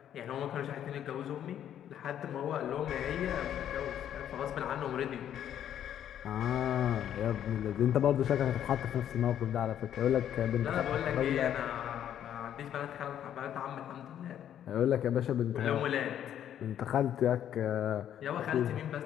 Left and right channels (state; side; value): quieter; right; 10.2 dB